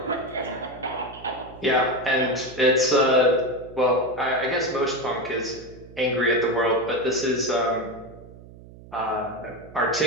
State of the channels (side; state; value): right; noise; hum, 19 dB below the sound